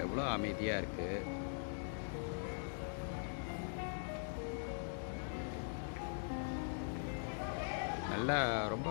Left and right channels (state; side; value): silent; right; digital silence